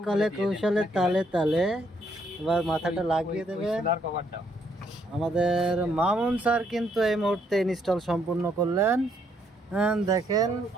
কলে কৌশলে তালে তালে। এবার মাথাটা লাগিয়ে দেবে। আমাদের মামুন স্যার কিন্তু এই মুহূর্তে ইনস্টল সম্পূর্ণ করলেন। দেখেন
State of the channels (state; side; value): normal; both; correlation 0.71